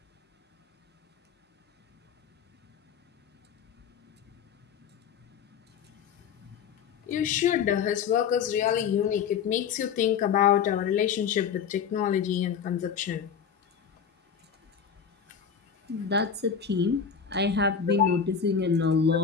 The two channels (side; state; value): right; quieter; 7.1 dB